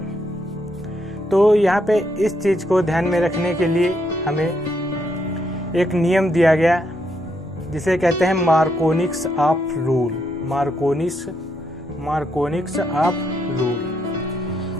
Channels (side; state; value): both; normal; correlation 0.77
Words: तो यहाँ पे इस चीज़ को ध्यान में रखने के लिए हमें एक नियम दिया गया जिसे कहते हैं मार्कोनिक्स of rule. मार्कोनिक्स of rule,